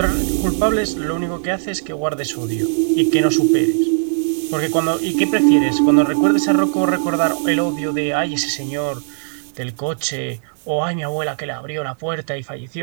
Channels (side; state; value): left; silent; digital silence